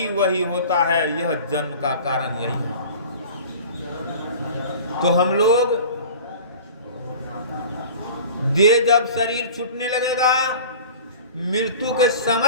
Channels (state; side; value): inverted; both; correlation -0.40